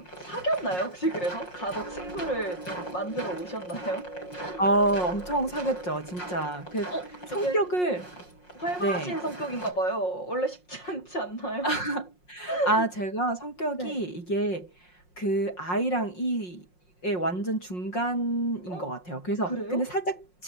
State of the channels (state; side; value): late; right; 5.6 ms